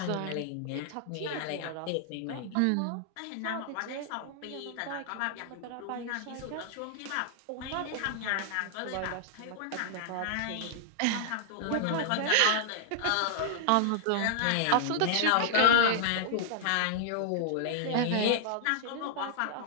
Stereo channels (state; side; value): different; both; correlation -0.01